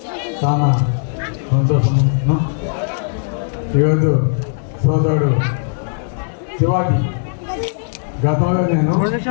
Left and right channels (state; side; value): silent; right; digital silence